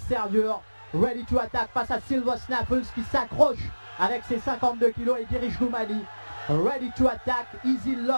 Ready to Attack face à Silver Snuffles qui s'accroche avec ses 52 kilos et dirige Goumali. Ready to Attack, Easy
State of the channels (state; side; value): inverted; both; correlation -1.00